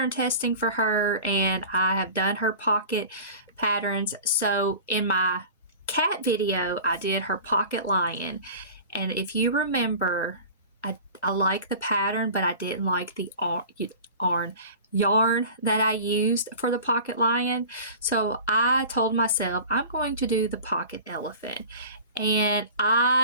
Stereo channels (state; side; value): inverted; both; correlation -0.38